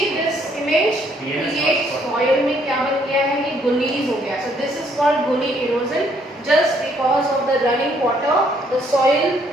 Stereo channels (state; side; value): normal; both; correlation 0.68